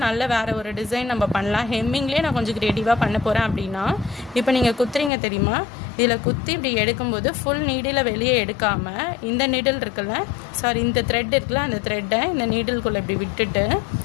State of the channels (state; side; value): drops out; right; at 5.1 s